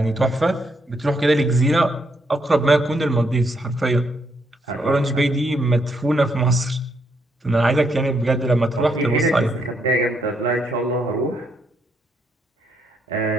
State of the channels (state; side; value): normal; both; correlation 0.76